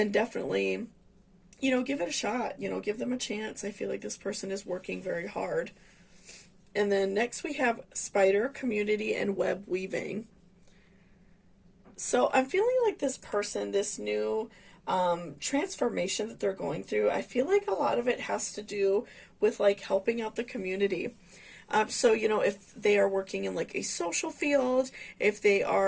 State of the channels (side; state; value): both; identical; correlation 1.00